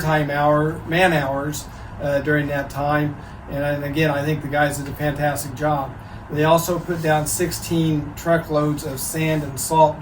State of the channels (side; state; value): both; identical; correlation 1.00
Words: man hours during that time, and again, I think the guys did a fantastic job. They also put down 16 truckloads of sand and salt